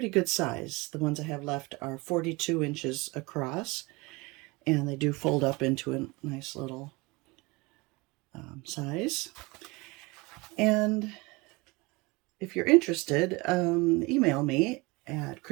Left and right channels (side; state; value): left; quieter; 24.7 dB